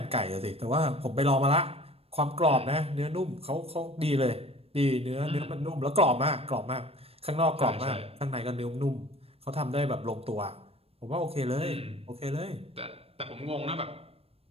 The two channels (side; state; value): left; late; 0.28 ms